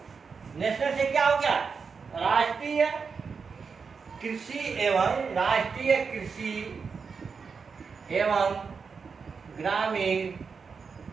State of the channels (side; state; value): left; quieter; 5.4 dB